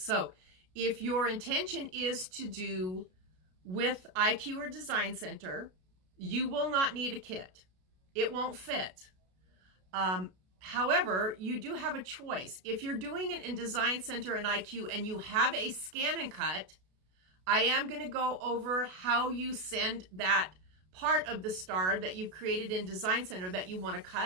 So if your intention is to do with IQ or Design Center, you will not need a kit. It won't fit. However, you do have a choice. If you're doing it in Design Center and IQ and you have a scan and cut, I am going to go over how you send that part of the star that you've created in Design Center that you want to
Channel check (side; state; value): left; late; 33 ms